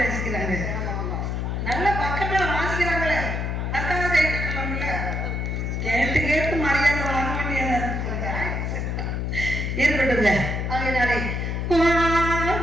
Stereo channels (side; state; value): left; noise; hum, 1 dB below the sound